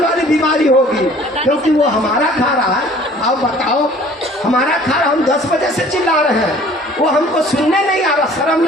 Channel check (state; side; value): normal; both; correlation 0.52